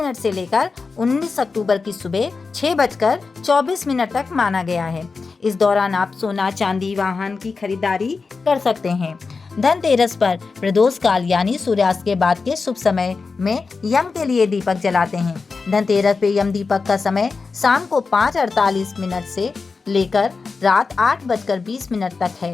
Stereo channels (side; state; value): right; quieter; 4.5 dB